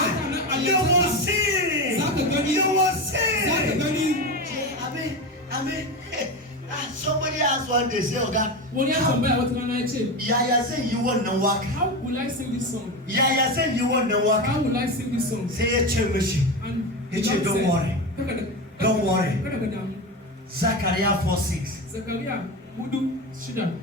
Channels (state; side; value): normal; both; correlation 0.20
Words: you will see. You will see. I mean, somebody asked one day, say, Oga, Yaya said you want to work. How will I sing this song? Yaya said you want to work. How will I sing this song? Say, don't worry. Don't worry. Zaria 4:6.